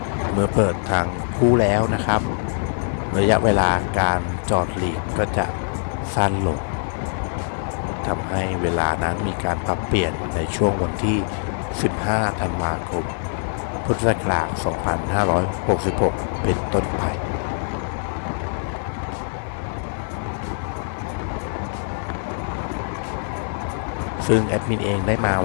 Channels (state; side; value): silent; right; 63 dB below the other